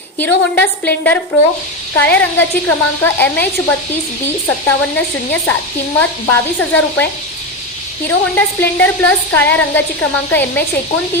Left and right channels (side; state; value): both; normal; correlation 0.15